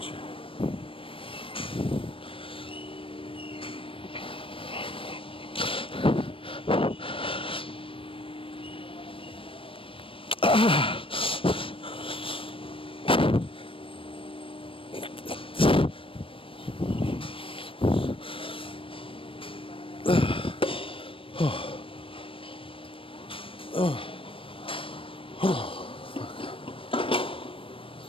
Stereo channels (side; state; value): right; late; 0.26 ms